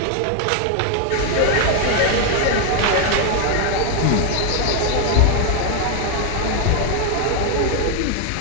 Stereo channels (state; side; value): different; both; correlation 0.01